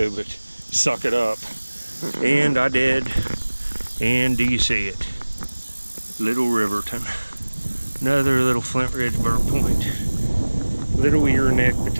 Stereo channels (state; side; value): inverted; both; correlation -1.00